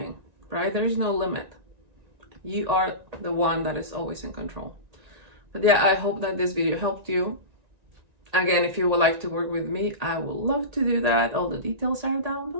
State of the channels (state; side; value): late; left; 1.9 ms